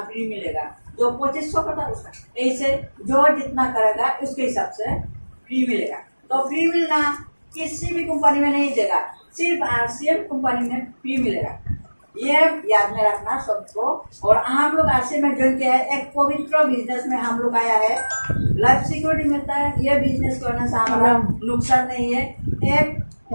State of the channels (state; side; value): inverted; both; correlation -1.00